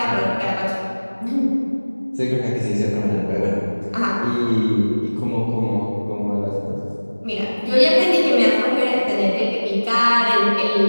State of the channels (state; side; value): inverted; both; correlation -1.00